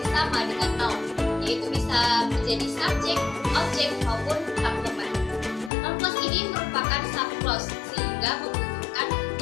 sama dengan noun, yaitu bisa menjadi subjek, objek, maupun complement. Noun clause ini merupakan subclause sehingga membutuhkan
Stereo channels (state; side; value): drops out; right; at 5.7 s